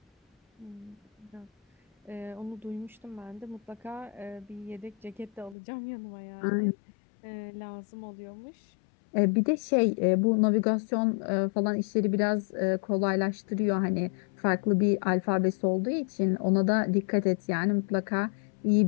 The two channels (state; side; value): drops out; right; at 5.6 s